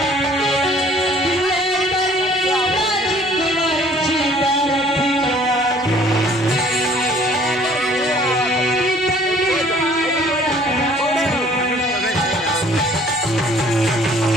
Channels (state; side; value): normal; both; correlation 0.56